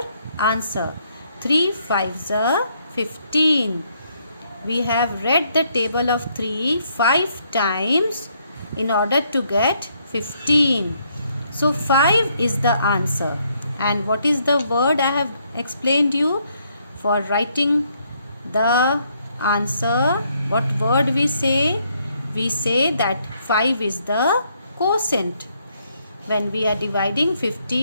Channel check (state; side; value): inverted; both; correlation -0.72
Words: answer. 3 5s are 15. We have read the table of 3 5 times in order to get 15. So 5 is the answer. And what is the word I have explained you for writing the answer? What word we say? We say that 5 is the quotient. When we are dividing